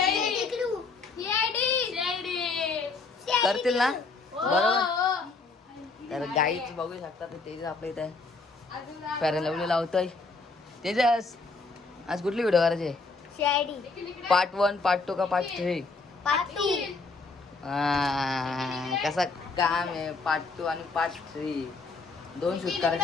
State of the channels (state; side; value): quieter; right; 4.0 dB